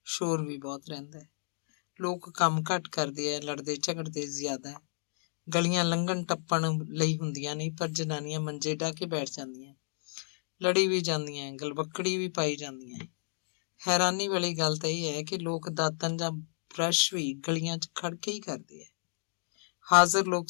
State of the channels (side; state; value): right; silent; digital silence